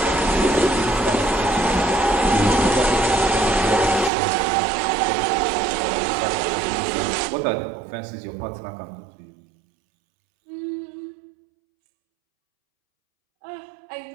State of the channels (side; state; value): left; drops out; at 4.1 s